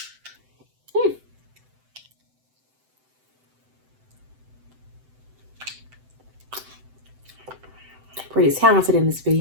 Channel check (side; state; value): left; late; 7.8 ms